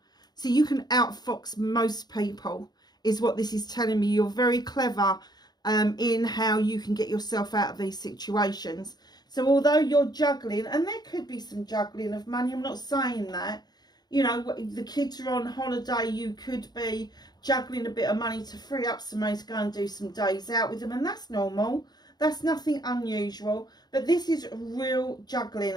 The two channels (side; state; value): right; late; 0.20 ms